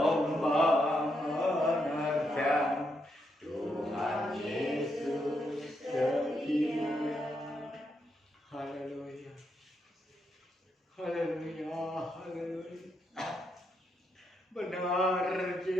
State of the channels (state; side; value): normal; both; correlation 0.80